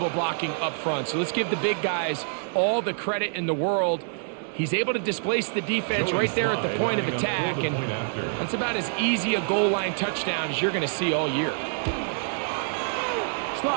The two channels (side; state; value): left; silent; digital silence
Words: blocking up front. So let's give the big guys all the credit in the world. He's able to displace the defense right there at the point of attack, and that's about as easy a goal line touchdown as you're going to see all year.